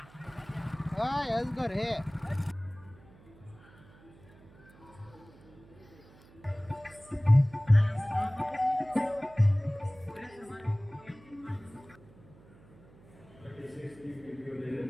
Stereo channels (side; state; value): right; noise; hum, 24 dB below the sound